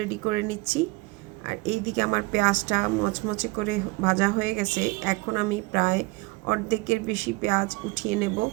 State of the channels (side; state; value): left; quieter; 23.5 dB